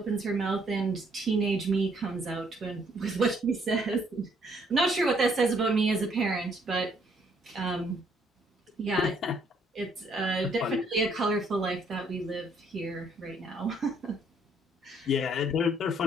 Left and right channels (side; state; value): both; normal; correlation 0.67